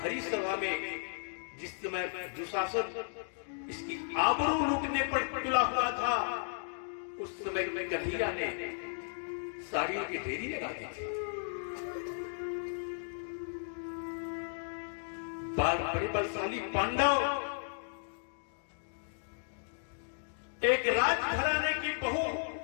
सभा में जिस समय दुशासन इसकी आबरू लूटने पर तुला हुआ था, उस समय में कन्हैया ने साड़ियों की ढेरी लगा दी थी। बड़े बलशाली पांडव एक राजघराने की बहू,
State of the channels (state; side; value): silent; right; digital silence